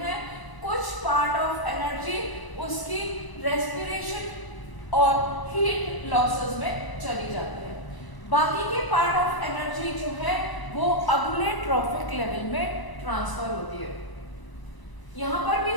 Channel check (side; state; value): right; late; 1.0 ms